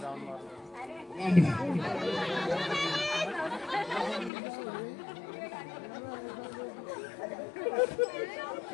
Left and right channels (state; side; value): drops out; right; at 4.3 s